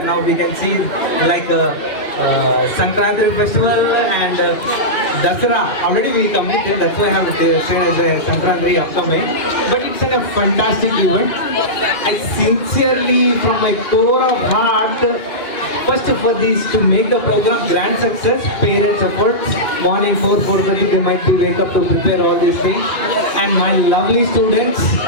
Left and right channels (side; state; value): right; late; 2.4 ms